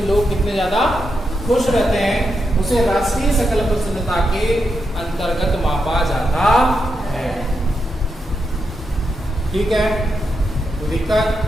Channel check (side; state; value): both; normal; correlation 0.85